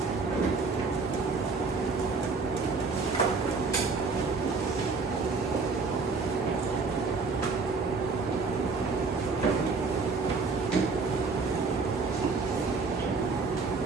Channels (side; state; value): left; quieter; 4.3 dB